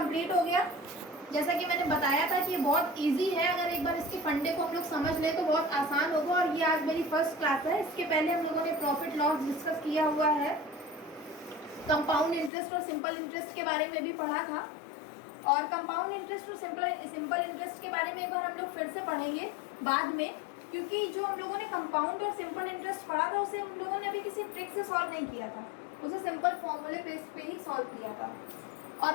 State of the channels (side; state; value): right; drops out; at 12.5 s